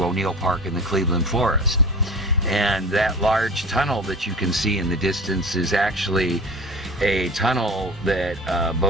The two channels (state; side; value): normal; both; correlation 0.36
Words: O'Neill Park in the Cleveland Forest. And that large tunnel that you can see in the distance is actually a tunnel that